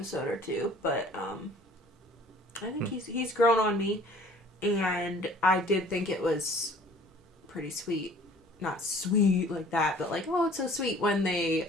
or two, but I think he's grown on me, and I did think it was pretty sweet. Not sweet like that, but like, oh, it's so sweet when they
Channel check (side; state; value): both; normal; correlation 0.52